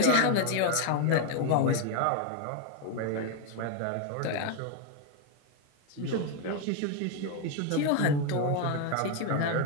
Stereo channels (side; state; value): both; different; correlation 0.01